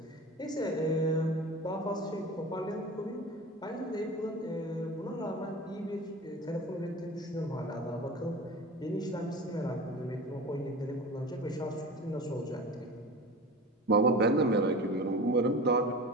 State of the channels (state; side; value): normal; both; correlation 0.34